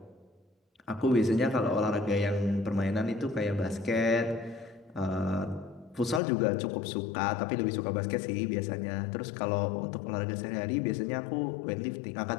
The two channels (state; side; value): drops out; right; at 6.2 s